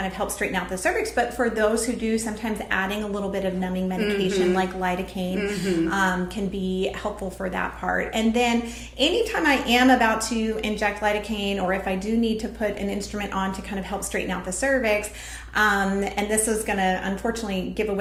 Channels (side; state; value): both; identical; correlation 1.00